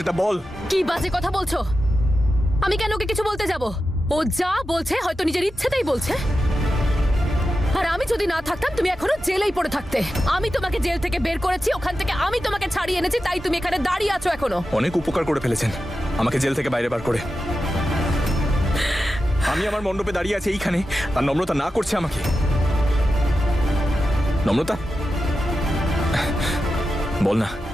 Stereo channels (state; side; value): normal; both; correlation 0.91